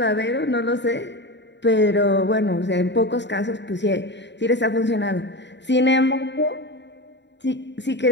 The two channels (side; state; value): right; late; 0.52 ms